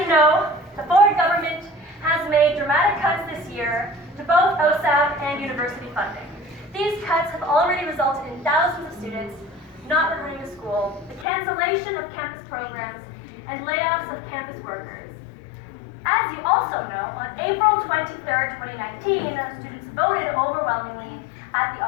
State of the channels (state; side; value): drops out; right; at 11.2 s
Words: know, the Ford government has made dramatic cuts this year to both OSAP and university funding. These cuts have already resulted in thousands of students not returning to school, the cancellation of campus programs, and layoffs of campus workers. As you also know, on April 23rd, 2019, students voted overwhelmingly at the